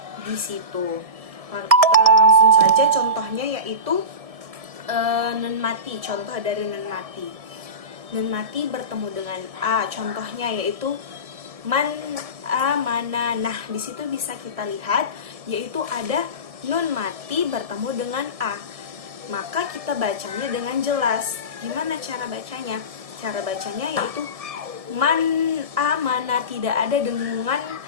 di situ. Langsung saja contohnya yaitu nun mati. Contoh dari nun mati. Nun mati bertemu dengan a. Contohnya yaitu man amana. Nah, di situ bisa kita lihat yaitu ada nun mati bertemu dengan a. Maka kita bacanya dengan jelas. Gimana cara bacanya? Cara bacanya yaitu man amana, tidak ada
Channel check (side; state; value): left; late; 1.7 ms